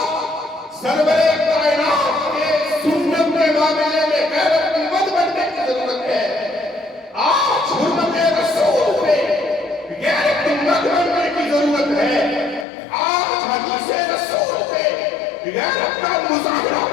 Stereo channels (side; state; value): right; drops out; at 12.7 s